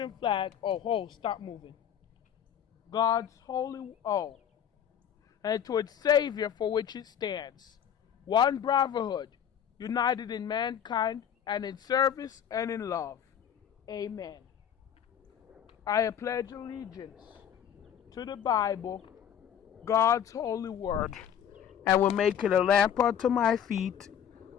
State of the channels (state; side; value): quieter; right; 9.1 dB